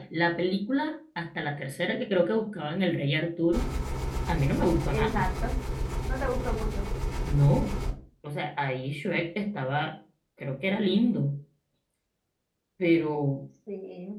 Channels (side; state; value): both; identical; correlation 1.00